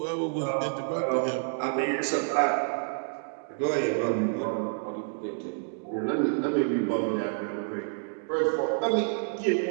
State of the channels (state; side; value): silent; left; digital silence